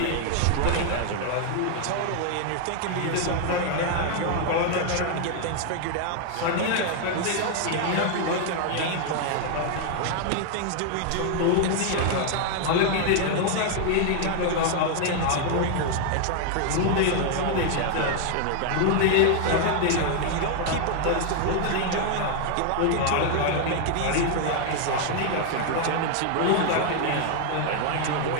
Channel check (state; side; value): different; both; correlation 0.00